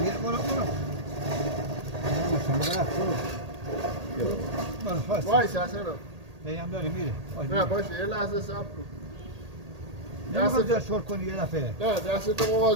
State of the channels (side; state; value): left; late; 1.8 ms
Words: برو وایس اصلا هم داری میره نه باشه یه لحظه صبر کن نمیخواد شل کنی یه دفعه نه دستتو